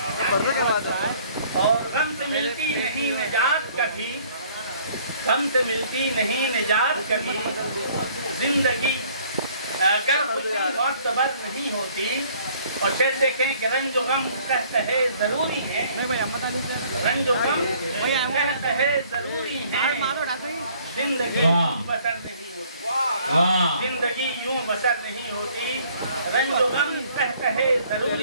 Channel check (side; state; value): both; inverted; correlation -0.58